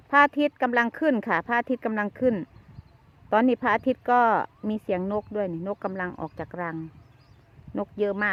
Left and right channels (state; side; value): identical; both; correlation 1.00